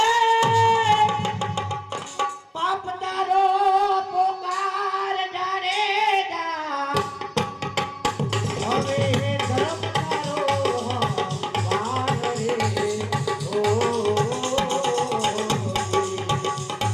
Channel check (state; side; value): identical; both; correlation 1.00